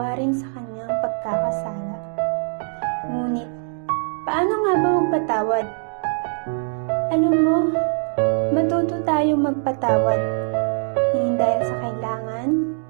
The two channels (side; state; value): left; silent; 56 dB below the other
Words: sa kanyang pagkakasala. Ngunit, paano nga ba magpatawad? Alam mo, matuto tayong magpatawad, hindi dahil sa kailangan,